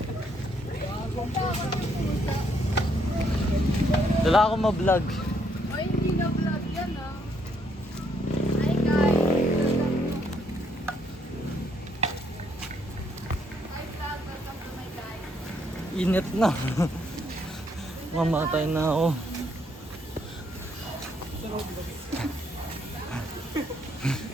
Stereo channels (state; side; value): normal; both; correlation 0.72